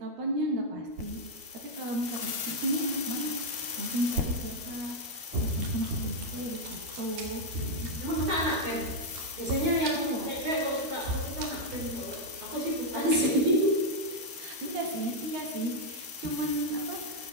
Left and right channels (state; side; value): late; left; 12 ms